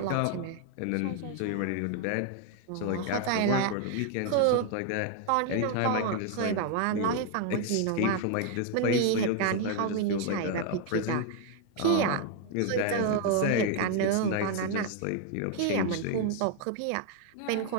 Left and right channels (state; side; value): different; both; correlation 0.00